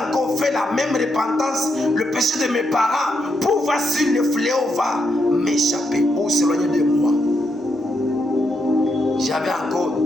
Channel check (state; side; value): normal; both; correlation 0.80